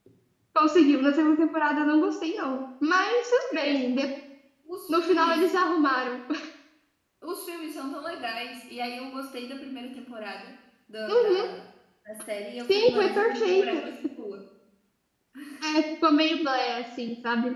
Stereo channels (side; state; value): both; identical; correlation 1.00